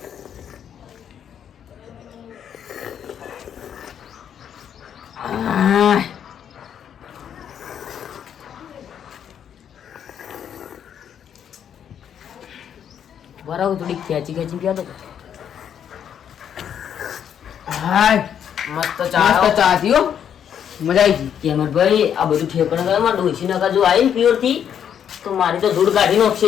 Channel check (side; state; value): right; quieter; 8.8 dB